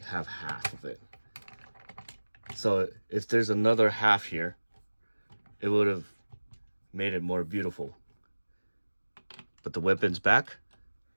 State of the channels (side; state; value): both; inverted; correlation -1.00